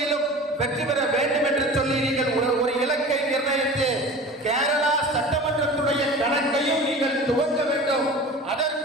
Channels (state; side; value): normal; both; correlation 0.37